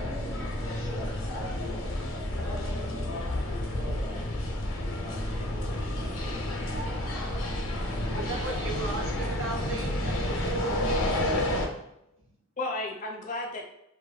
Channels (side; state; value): both; normal; correlation 0.47